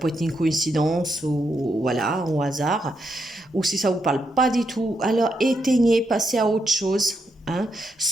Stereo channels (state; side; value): normal; both; correlation 0.80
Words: être une coïncidence ou voilà au hasard. Ou si ça vous parle pas du tout, alors éteignez, passez à autre chose. Hein.